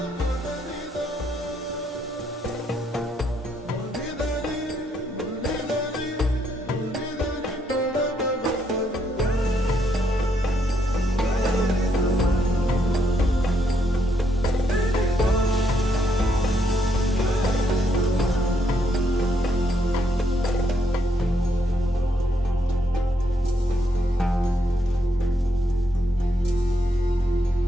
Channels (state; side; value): normal; both; correlation 0.75